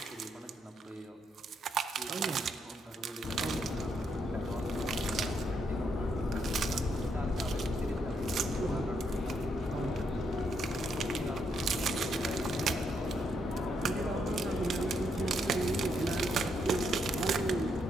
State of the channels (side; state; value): both; normal; correlation 0.77